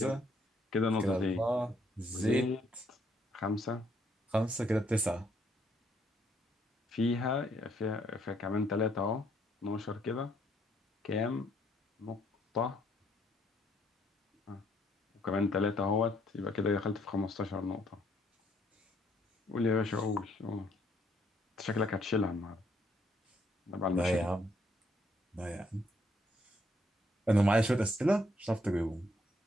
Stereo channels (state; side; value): normal; both; correlation 0.70